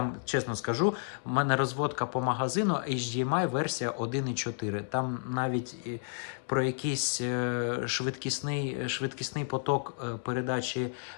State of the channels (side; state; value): right; silent; 57 dB below the other